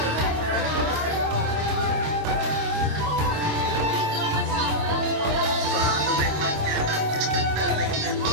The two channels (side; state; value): left; late; 26 ms